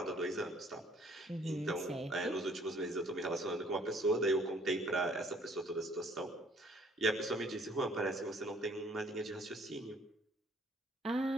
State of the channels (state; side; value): normal; both; correlation 0.60